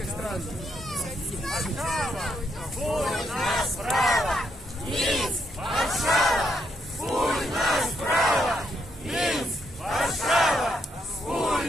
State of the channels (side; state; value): both; normal; correlation 0.77